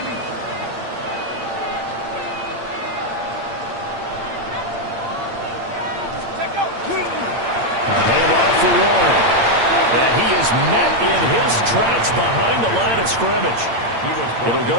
A handoff for Warren. And he is met in his tracks behind the line of scrimmage. It'll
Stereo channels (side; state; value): left; late; 8.7 ms